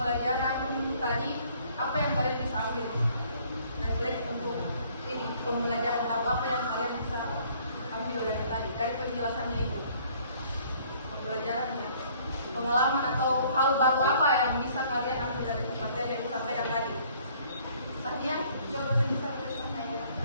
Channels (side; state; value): both; inverted; correlation -0.59